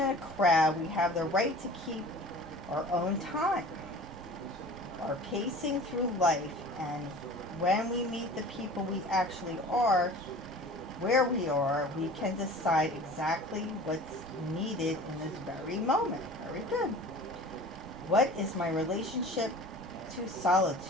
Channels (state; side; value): normal; both; correlation 0.41